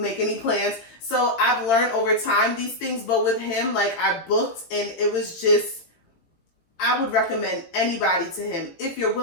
any plans. So I've learned over time these things, but with him, like, I booked, and it was just. I would recommend anybody to him if you're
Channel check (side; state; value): right; late; 18 ms